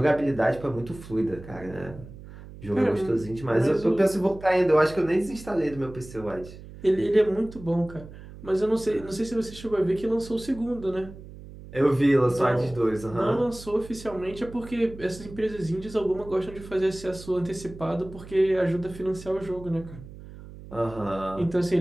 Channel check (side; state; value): right; noise; hum, 16 dB below the sound